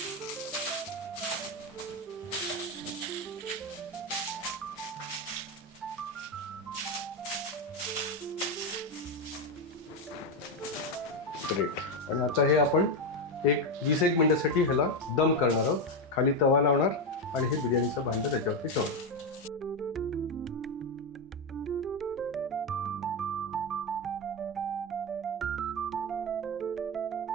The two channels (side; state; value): both; normal; correlation 0.09